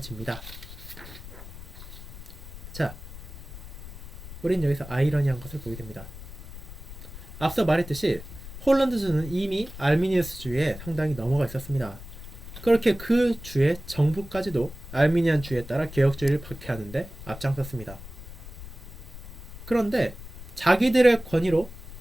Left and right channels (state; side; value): noise; left; rumble, 14 dB below the sound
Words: 자, 우린 여기서 아이러니한 것을 보게 됩니다. 앞서 말했듯이 홀란드주는 이미 알미니우스주의에 상당히 넘어가 있었습니다. 그렇게 그 주의 정부까지도 알미니안주의에 따라 개혁주의를 박해하는데 앞장섰습니다. 그런데 자기들의 권위로